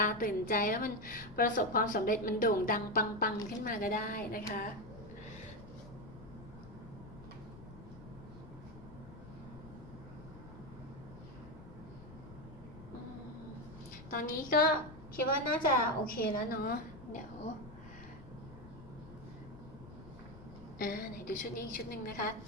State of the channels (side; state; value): left; noise; rumble, 16 dB below the sound